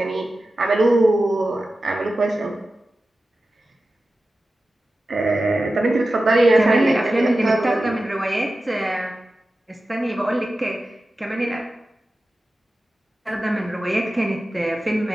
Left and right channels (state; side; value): normal; both; correlation 0.94